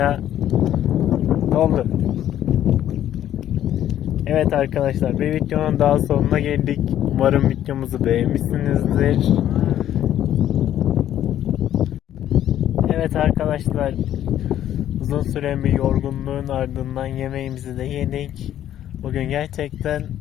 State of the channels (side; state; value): right; quieter; 11.5 dB